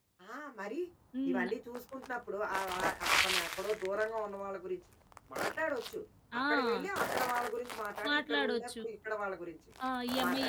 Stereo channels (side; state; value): both; identical; correlation 1.00